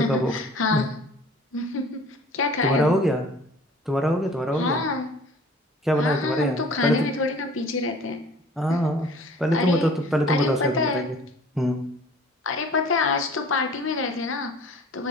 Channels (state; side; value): normal; both; correlation 0.48